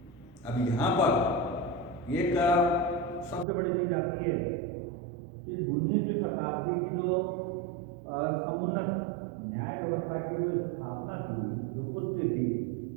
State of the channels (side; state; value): left; drops out; at 3.5 s